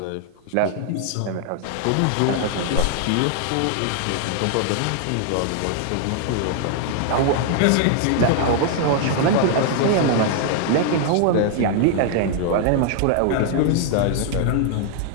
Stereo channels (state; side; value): different; both; correlation -0.01